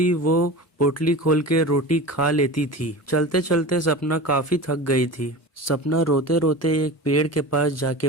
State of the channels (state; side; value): normal; both; correlation 0.31